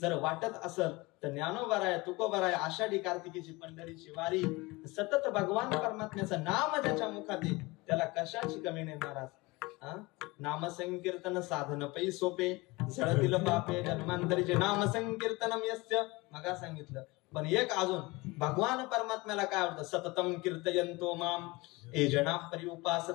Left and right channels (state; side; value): quieter; right; 23.4 dB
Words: वाटत असेल तर ज्ञानोबाराय, तुकोबाराय, आषाढी कार्तिकीची पंढरीची वारी, सतत भगवान परमात्म्याचं नाम ज्याच्या मुखात आहे त्याला कशाची कमी नाही महाराज. नाम संकीर्तन साधन पै सोपे, झळतील पापे जन्मांतरीचे नाम संकीर्तनम यस्य. मगा सांगितलं. पण एक अजून भगवान परमात्म्याला काय आवडतं, सततम कीर्तयन्तो माम ये जना